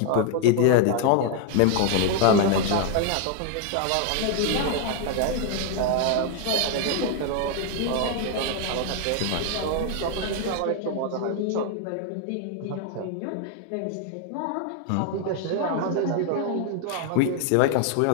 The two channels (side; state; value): both; different; correlation 0.00